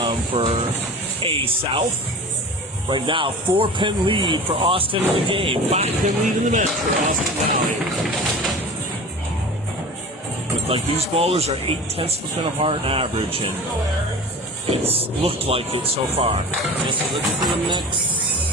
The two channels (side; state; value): both; normal; correlation 0.36